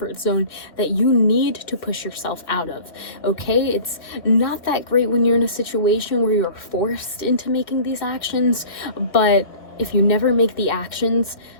zone that you need to push yourself out of. Okay, it's not that great when you're in a situation where you're forced into making these actions, but if you never make the actions,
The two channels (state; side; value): late; right; 2.1 ms